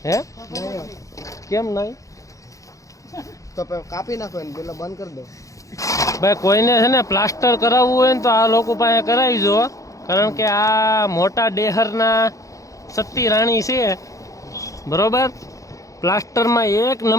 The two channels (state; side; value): late; right; 0.16 ms